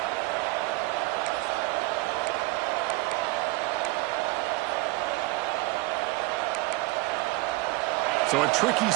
So a tricky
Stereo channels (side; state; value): left; quieter; 21.7 dB